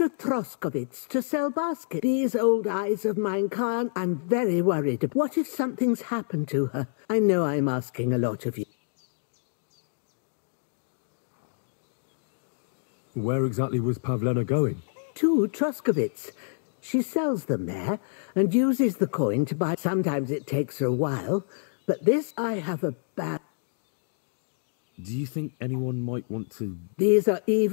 Troskovitz to sell baskets. These old eyes of mine can't. I'm very worried. What if something's happened to her? I know I'm asking a lot of you. Where exactly was Pavlena going? To Troskovitz. She sells them there and uses the coin to buy. Sometimes it takes her a while, but this I have a bad... Do you think anyone might want to... These are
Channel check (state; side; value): silent; right; digital silence